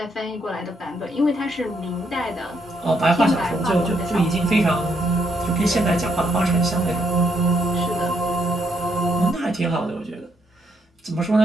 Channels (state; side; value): normal; both; correlation 0.75